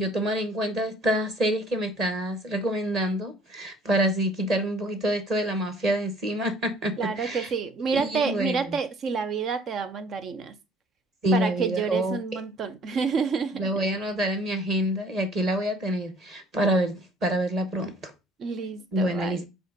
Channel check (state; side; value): normal; both; correlation 0.56